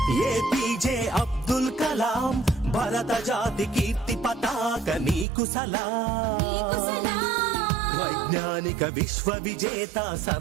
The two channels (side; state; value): left; drops out; at 5.2 s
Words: ఏపీజే అబ్దుల్ కలాం భారత జాతి కీర్తి పతాక నీకు సలాం వైజ్ఞానిక విశ్వ విజేత